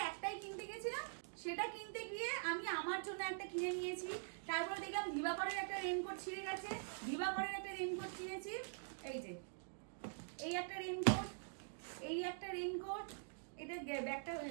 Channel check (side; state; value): left; silent; digital silence